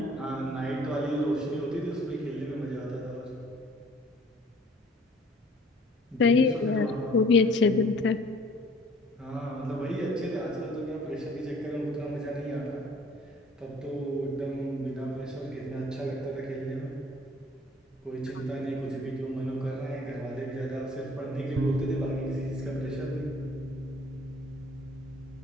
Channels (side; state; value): both; normal; correlation 0.54